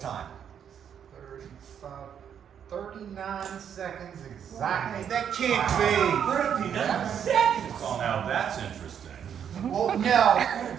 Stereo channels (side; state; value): left; quieter; 8.4 dB